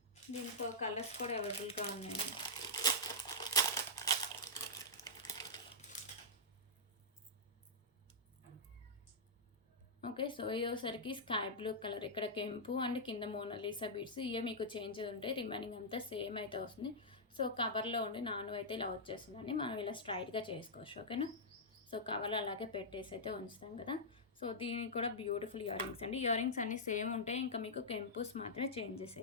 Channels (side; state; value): both; normal; correlation -0.11